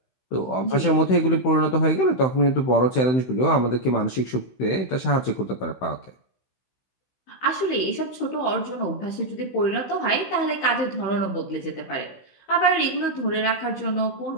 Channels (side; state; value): right; late; 16 ms